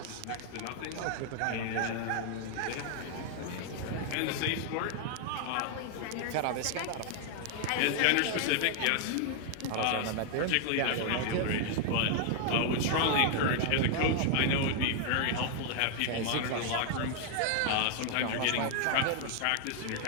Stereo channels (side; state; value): both; different; correlation 0.00